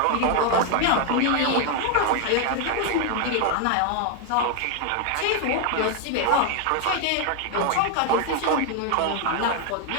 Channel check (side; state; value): both; different; correlation 0.00